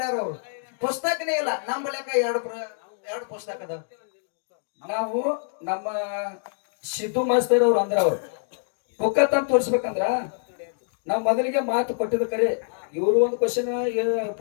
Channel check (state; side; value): silent; right; digital silence